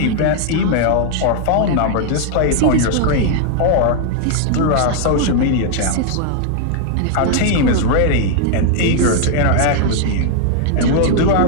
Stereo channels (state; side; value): different; both; correlation 0.00